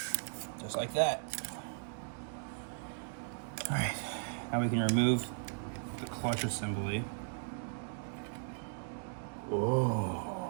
Just like that. All right, now we can remove the clutch assembly.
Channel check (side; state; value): left; silent; digital silence